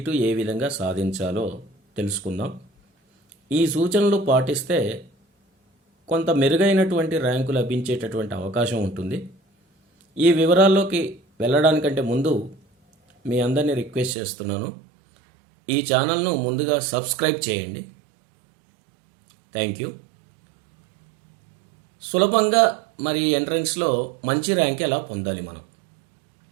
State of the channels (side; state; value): left; drops out; at 14.2 s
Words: ఏ విధంగా సాధించాలో తెలుసుకుందాం. ఈ సూచనలు పాటిస్తే కొంత మెరుగైనటువంటి ర్యాంకు లభించేటటువంటి అవకాశం ఉంటుంది. ఈ వివరాల్లోకి వెళ్ళడానికంటే ముందు మీ అందరినీ రిక్వెస్ట్ చేస్తున్నాను, ఈ ఛానల్ను ముందుగా సబ్స్క్రైబ్ చేయండి. Thank you. సులభంగా మరి ఎంట్రన్స్లో మంచి ర్యాంక్ ఎలా పొందాలి, మనం